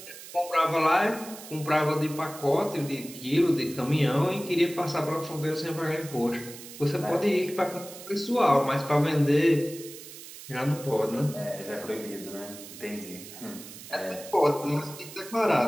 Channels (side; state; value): right; noise; hiss, 15 dB below the sound